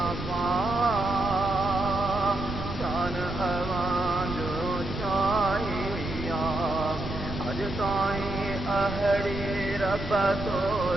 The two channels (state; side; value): noise; right; rumble, 8 dB below the sound